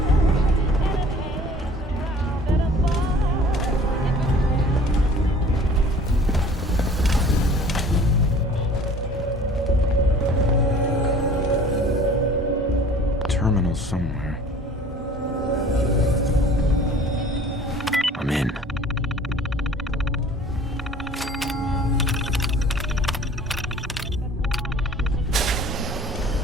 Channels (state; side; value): normal; both; correlation 0.48